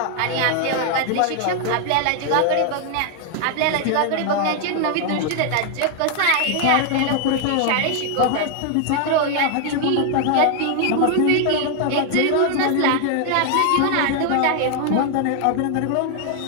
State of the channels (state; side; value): different; both; correlation 0.00